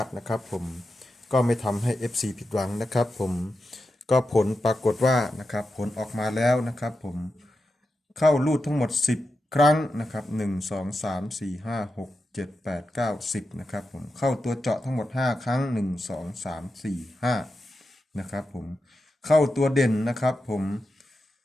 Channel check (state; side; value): normal; both; correlation 0.89